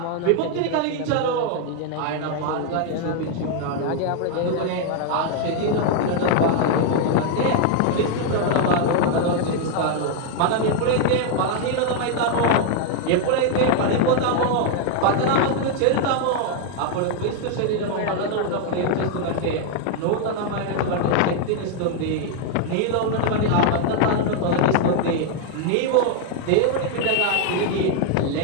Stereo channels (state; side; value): different; both; correlation 0.00